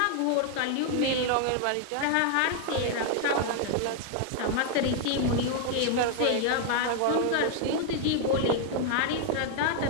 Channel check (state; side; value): different; both; correlation 0.00